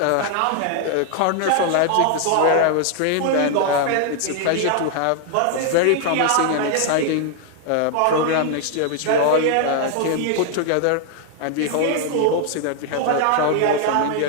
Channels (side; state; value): both; different; correlation 0.00